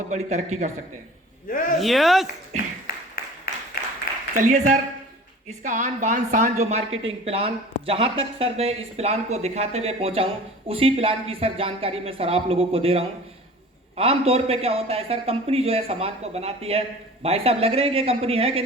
बड़ी तरक्की कर सकते हैं। यस। चलिए सर, इसका आन बान शान जो मार्केटिंग प्लान, जहां तक सर मैं इस प्लान को दिखाते हुए पहुंचा हूं उसी प्लान की सर जानकारी मैं सर आप लोगों को दे रहा हूं। आमतौर पे क्या होता है सर, कंपनी जो है सामान को बनाती है। भाई साहब लग रहे हैं कि कंपनी है कि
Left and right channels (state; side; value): normal; both; correlation 0.42